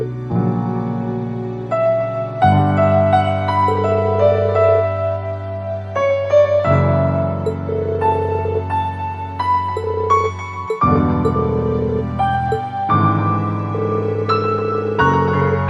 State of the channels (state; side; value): identical; both; correlation 1.00